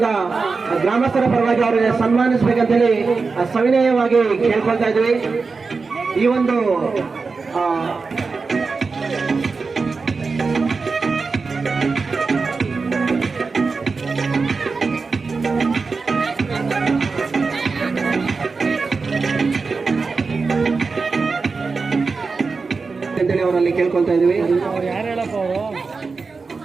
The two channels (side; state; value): left; quieter; 4.5 dB